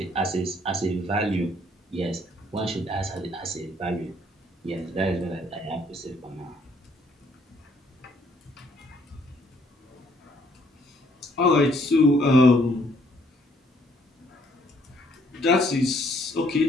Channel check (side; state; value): both; normal; correlation 0.66